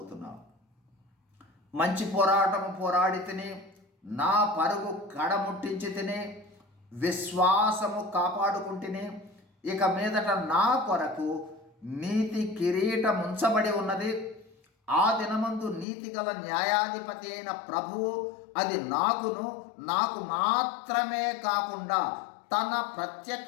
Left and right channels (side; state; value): right; drops out; at 15.9 s